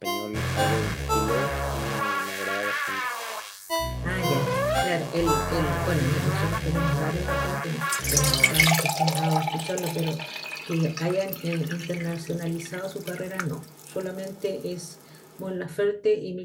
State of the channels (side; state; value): both; identical; correlation 1.00